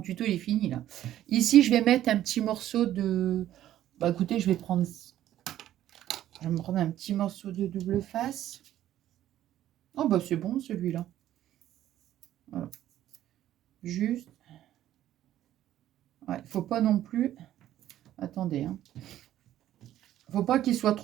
tuto il est fini là. Ici, je vais mettre un petit morceau de... Bah écoutez, je vais me prendre un petit morceau de double face. Oh bah c'est bon celui-là. Voilà. Juste. Ouais, faut pas non plus... Attendez, hein. Faut pas qu'il soit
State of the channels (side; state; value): left; quieter; 12.6 dB